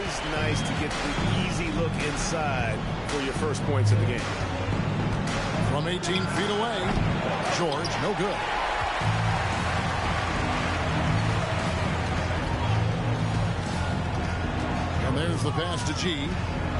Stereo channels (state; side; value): identical; both; correlation 1.00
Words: nice to get the easy look inside for your first points of the game. From 18 feet away, George, no good. And there's the pass to G.